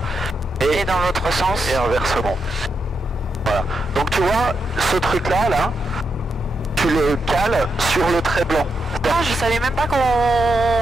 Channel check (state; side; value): normal; both; correlation 0.83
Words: Et dans l'autre sens. Et inversement. Voilà. Donc tu vois, ce truc-là, là, tu le cales sur le trait blanc. Ah, je savais même pas qu'on